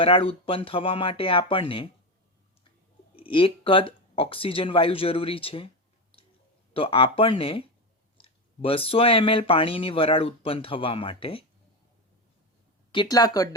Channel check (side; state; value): both; normal; correlation 0.16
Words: ઉત્પન્ન થવા માટે આપણને 1 કદ ઓક્સિજન વાયુ જરૂરી છે. તો આપણને 200 ml પાણીની વરાળ ઉત્પન્ન થવા માટે કેટલા કદ